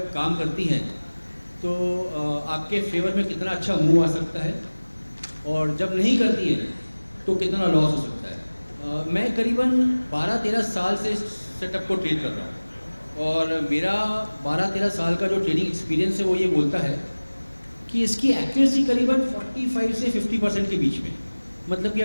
काम करती हैं तो आपके फेवर में कितना अच्छा मूव आ सकता है, और जब नहीं करती है तो कितना लॉस हो सकता है। मैं करीबन 12-13 साल से इस सेटअप को ट्रेड कर रहा हूँ, और मेरा 12-13 साल का जो ट्रेडिंग एक्सपीरियंस है वो ये बोलता है कि इसकी एक्यूरेसी करीबन 45 से 50% के बीच में। मतलब कि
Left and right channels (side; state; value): both; inverted; correlation -1.00